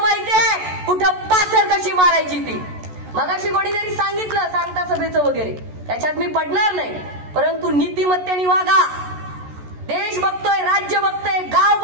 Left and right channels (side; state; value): left; late; 14 ms